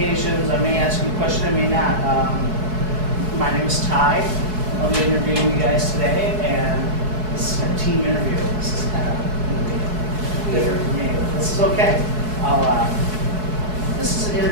I may ask you a question, I may not. My name is Ty. I'll be interviewing you guys today, and this is a team interview. This is kind of different for me. This is okay. This is an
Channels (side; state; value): left; late; 4.6 ms